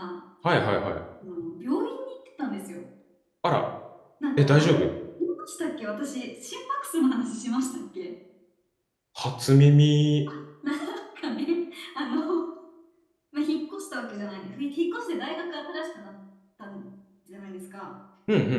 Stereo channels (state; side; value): identical; both; correlation 1.00